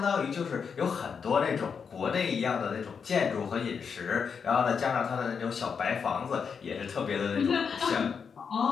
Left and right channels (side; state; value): right; quieter; 6.2 dB